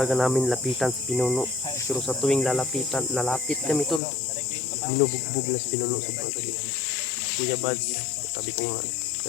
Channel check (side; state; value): right; drops out; at 4.0 s